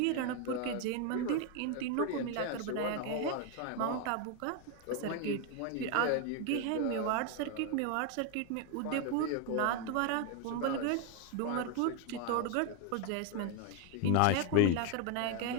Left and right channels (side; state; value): both; different; correlation 0.01